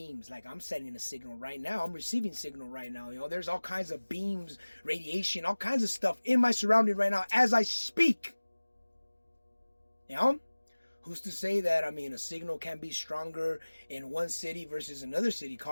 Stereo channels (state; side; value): inverted; both; correlation -1.00